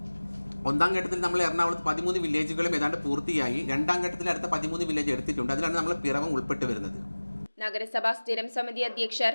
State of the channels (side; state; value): both; inverted; correlation -1.00